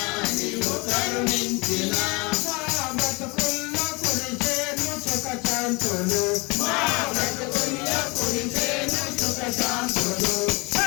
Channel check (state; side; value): quieter; right; 27.3 dB